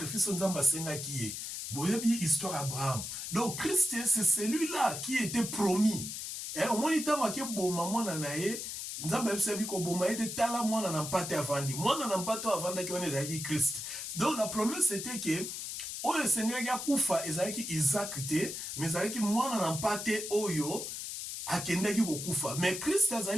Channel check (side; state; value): left; noise; hiss, 6 dB below the sound